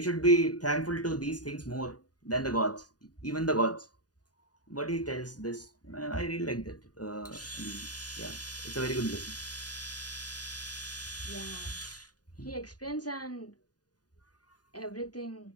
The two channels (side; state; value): right; late; 0.68 ms